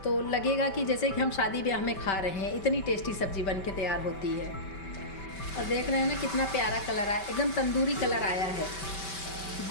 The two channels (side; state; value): right; late; 5.2 ms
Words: तो लगेगा कि जैसे कि हम शादी ब्याह में खा रहे हैं। इतनी टेस्टी सब्ज़ी बन के तैयार होती है। और देख रहे हैं ना कितना प्यारा कलर आया, एकदम तंदूरी कलर आया है।